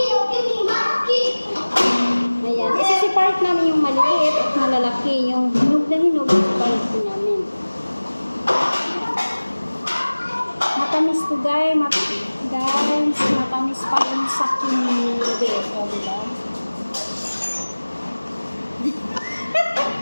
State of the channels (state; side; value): inverted; both; correlation -1.00